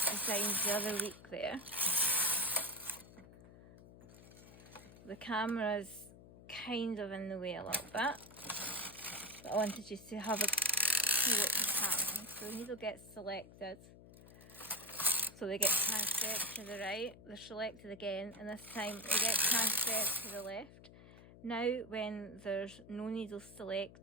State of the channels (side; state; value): left; noise; hum, 19 dB below the sound